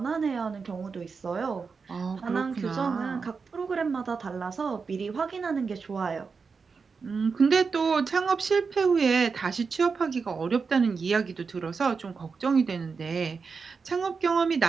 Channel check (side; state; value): left; quieter; 5.1 dB